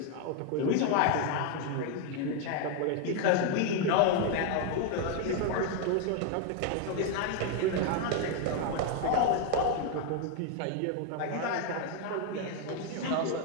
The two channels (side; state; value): both; different; correlation 0.01